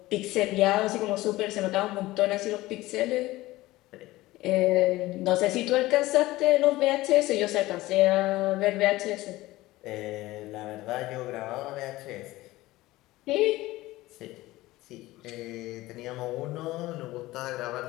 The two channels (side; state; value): right; quieter; 18.2 dB